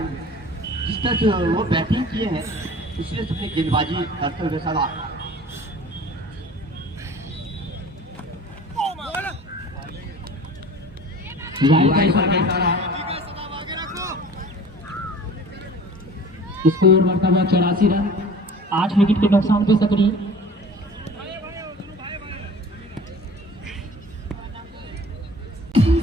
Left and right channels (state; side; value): normal; both; correlation 0.43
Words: जिस तरह से वो बैटिंग किए हैं उसने अपनी गेंदबाजी करते हुए शादाब। स्कोर बढ़ता हुआ 84 रन। 8 विकेट के नुकसान पे सकरी।